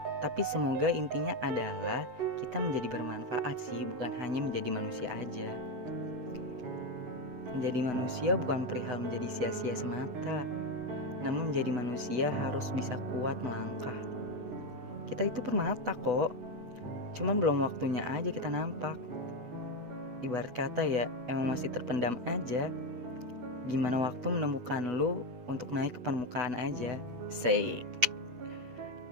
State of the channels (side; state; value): left; late; 8.1 ms